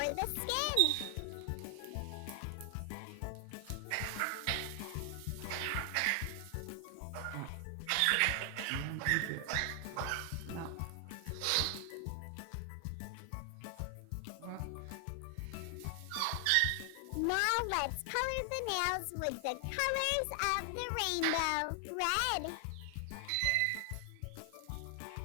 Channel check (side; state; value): both; different; correlation 0.00